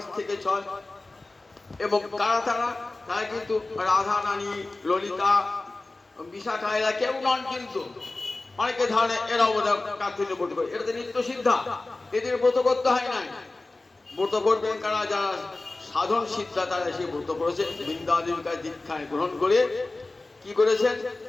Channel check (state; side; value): quieter; right; 3.1 dB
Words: থেকে 6। এবং কারা তারা? তারা কিন্তু রাধা রানী, ললিতা, বিশাখা এরা কেউ নন। কিন্তু অনেকে ধারণে এরাও কার্তিক ব্রত করে। এটা তো নিত্য সিদ্ধা, এদের ব্রত করতে হয় নাই। ব্রত করবেন কারা? যারা সাধন সিদ্ধা তারা সে ব্রত করেছে। বৃন্দাদেবীর কাছে দীক্ষায় গ্রহণ করে কি করেছেন?